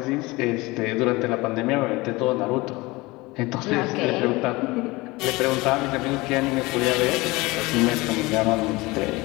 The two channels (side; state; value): right; quieter; 22.2 dB